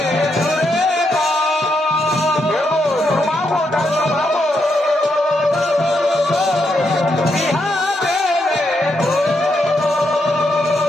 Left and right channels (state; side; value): normal; both; correlation 0.80